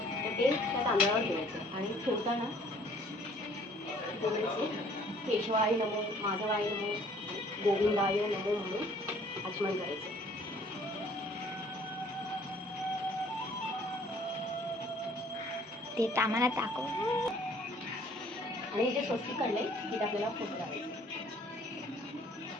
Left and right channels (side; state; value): both; normal; correlation 0.57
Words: तर ते त्या तांदळावर ठेवायचं आणि ठेवताना बोलायचे केशवाय नमो, माधवाय नमो, गोविंदाय नमो म्हणून आचमन करायचं. ते आम्हाला दाखव. आणि जे स्वस्तिक काढलंय तिथे आपल्याला फोटो लावायचे.